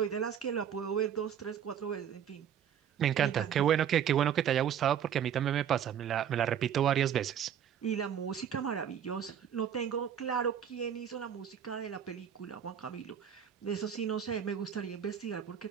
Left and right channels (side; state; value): left; quieter; 8.9 dB